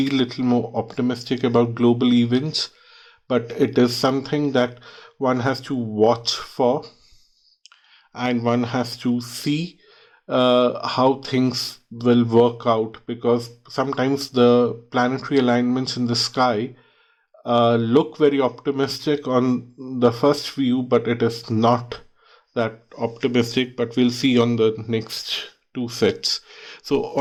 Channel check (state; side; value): identical; both; correlation 1.00